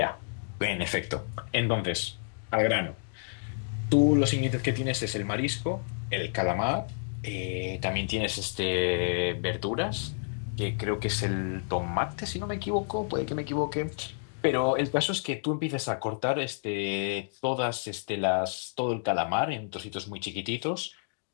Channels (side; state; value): right; silent; digital silence